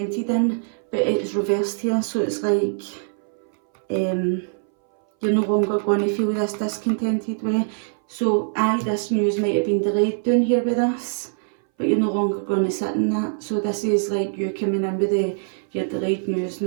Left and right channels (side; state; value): left; silent; 60 dB below the other